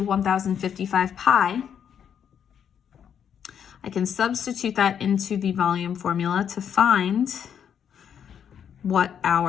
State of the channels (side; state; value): right; quieter; 8.3 dB